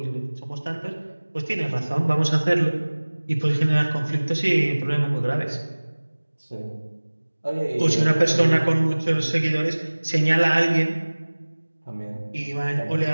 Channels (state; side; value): inverted; both; correlation -1.00